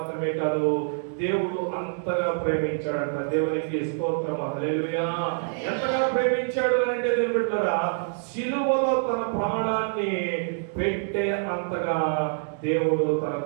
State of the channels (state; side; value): silent; left; digital silence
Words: కాదు, దేవుడు అంతగా ప్రేమించాడంట. దేవునికి స్తోత్రం, హల్లెలూయా. ఎంతగా ప్రేమించాడు అని అంటే దేవుని బిడ్డలారా, శిలువలో తన ప్రాణాన్ని పెట్టే అంతగా దేవుడు తన